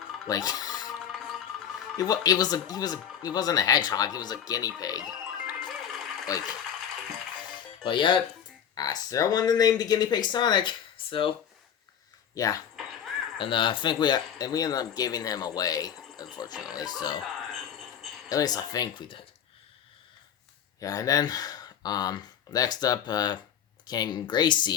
he wasn't a hedgehog, he was a guinea pig. But yeah, I still wanted to name the guinea pig Sonic, so, yeah. And, I think we ended up giving him away, unfortunately, so, at least I think we did. Yeah, and then, next up, came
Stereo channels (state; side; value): quieter; right; 8.8 dB